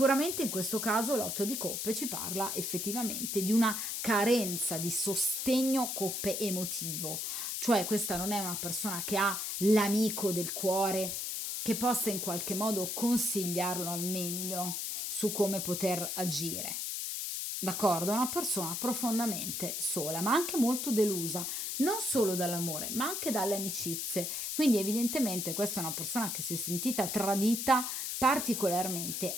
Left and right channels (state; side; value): noise; left; hiss, 3 dB below the sound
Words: in questo caso l'otto di coppe ci parla effettivamente di una carenza di sostegno coppe emotivo, cioè questa non è una persona che ha l'amico del cuore che possa in qualche modo consigliarlo al meglio su come poter agire. D'accordo? È una persona profondamente sola, ma anche molto delusa, non solo dall'amore, ma anche dalle amicizie. Quindi evidentemente questa è una persona che si è sentita tradita